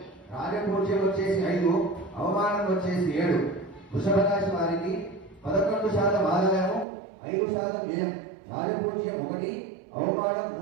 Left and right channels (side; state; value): left; drops out; at 6.9 s